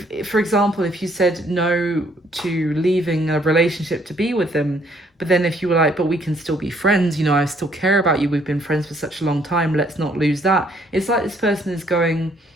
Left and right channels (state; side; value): normal; both; correlation 0.65